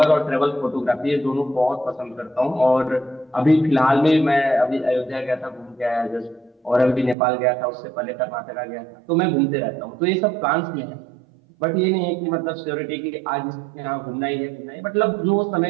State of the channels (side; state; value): left; drops out; at 7.2 s